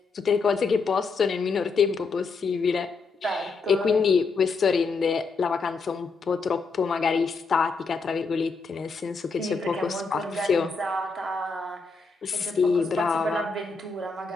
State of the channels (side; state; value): right; quieter; 4.4 dB